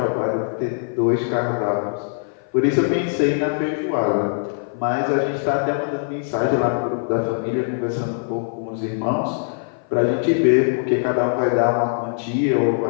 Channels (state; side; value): silent; right; 57 dB below the other